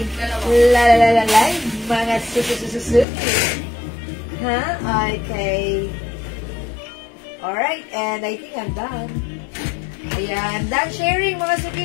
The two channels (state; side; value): drops out; right; at 3.1 s